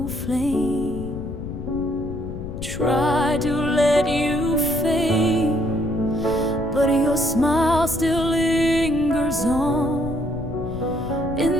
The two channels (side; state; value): left; noise; rumble, 9 dB below the sound